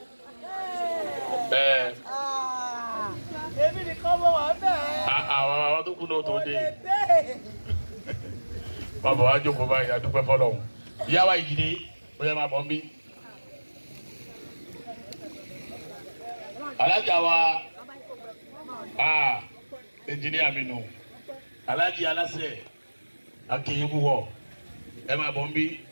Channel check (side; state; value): both; inverted; correlation -1.00